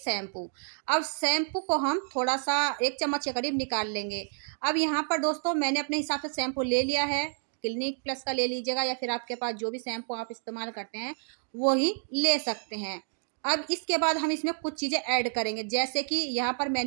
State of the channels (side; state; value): left; silent; 58 dB below the other